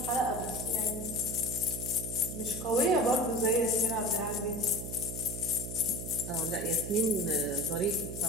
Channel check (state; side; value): noise; right; hum, 7 dB below the sound